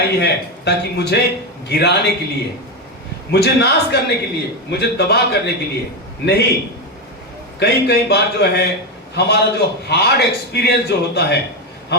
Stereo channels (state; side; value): normal; both; correlation 0.11